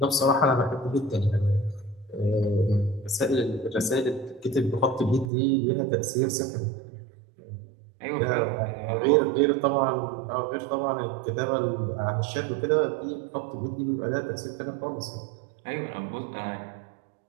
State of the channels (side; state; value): left; drops out; at 5.3 s